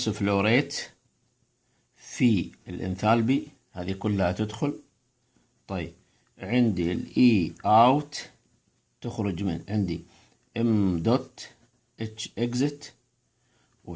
فلوريت في الانثالبي، هذه كلها تدخل. طيب عندي الاي اوت تخرج من عندي ام دوت اتش اكزت،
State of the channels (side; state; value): both; identical; correlation 1.00